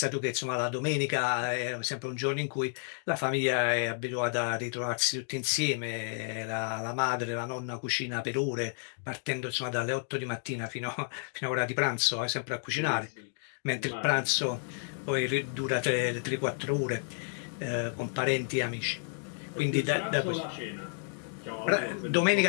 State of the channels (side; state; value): right; silent; 57 dB below the other